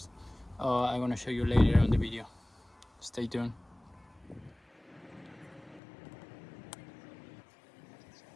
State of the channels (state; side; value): drops out; right; at 5.8 s